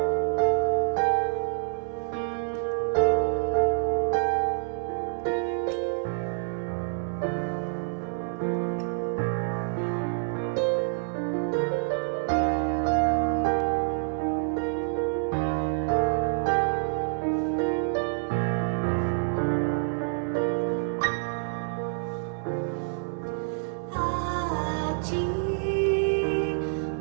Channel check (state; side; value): silent; left; digital silence